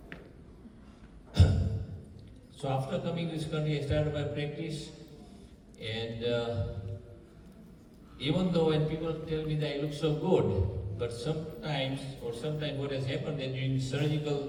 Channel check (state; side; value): identical; both; correlation 1.00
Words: So after coming to this country, I started my practice, and even though when people tell me that I look so good, but sometimes what has happened that during